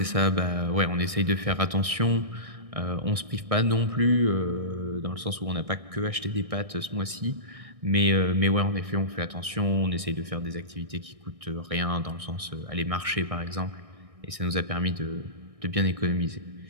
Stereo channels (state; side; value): late; left; 1.6 ms